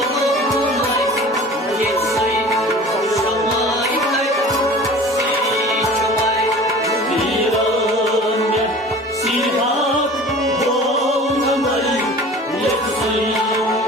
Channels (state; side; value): normal; both; correlation 0.42